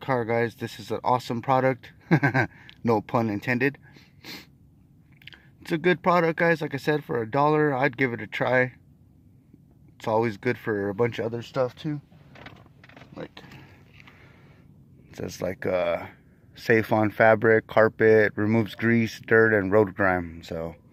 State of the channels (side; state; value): both; identical; correlation 1.00